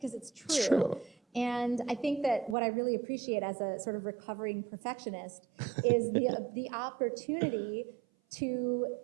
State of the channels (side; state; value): left; drops out; at 2.6 s